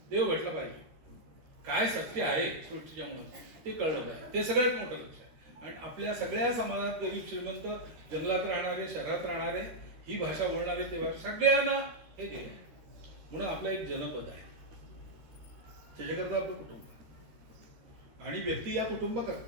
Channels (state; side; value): late; left; 13 ms